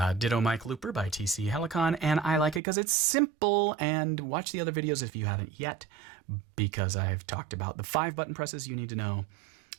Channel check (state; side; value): drops out; left; at 2.6 s